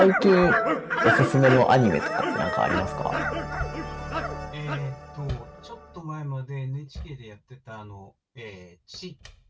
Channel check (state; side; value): identical; both; correlation 1.00